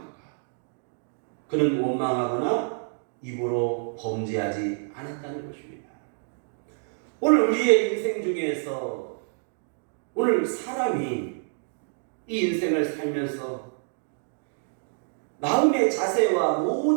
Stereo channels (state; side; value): silent; left; digital silence